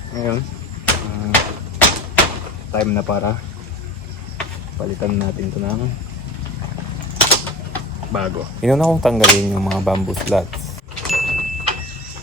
ngayon time na para palitan natin ito ng bago. Inuna kong tanggalin yung mga bamboo slats.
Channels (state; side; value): normal; both; correlation 0.34